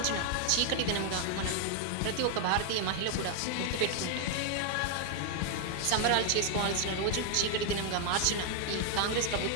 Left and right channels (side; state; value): both; different; correlation 0.00